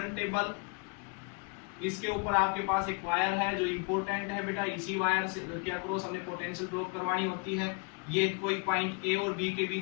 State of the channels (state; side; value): quieter; right; 32.0 dB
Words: टेबल, इसके ऊपर आपके पास एक वायर है जो इंपॉर्टेंट है बेटा, इसी वायर से के अक्रॉस हमने पोटेंशियल ड्रॉप करवानी होती है। ये कोई पॉइंट ए और बी के